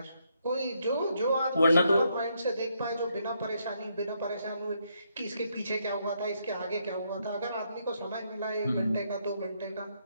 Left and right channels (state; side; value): inverted; both; correlation -0.76